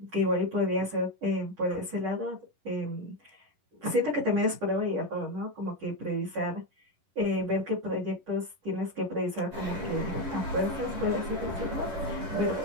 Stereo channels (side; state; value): left; late; 11 ms